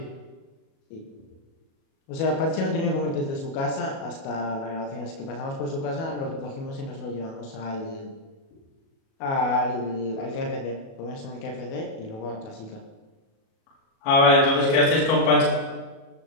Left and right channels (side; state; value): right; late; 37 ms